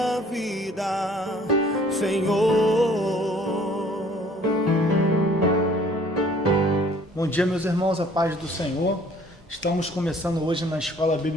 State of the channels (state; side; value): normal; both; correlation 0.56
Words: vida, Senhor. Bom dia, meus irmãos, a paz do Senhor. Estamos começando hoje na Escola